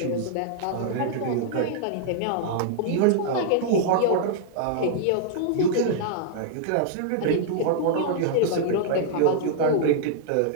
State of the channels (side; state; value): both; different; correlation -0.01